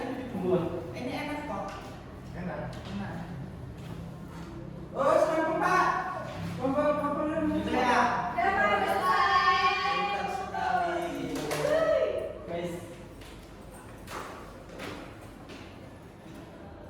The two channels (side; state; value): both; identical; correlation 1.00